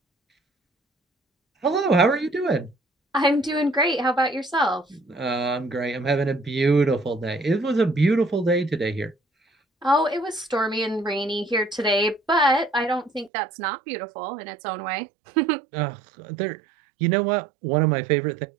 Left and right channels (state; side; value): drops out; left; at 13.3 s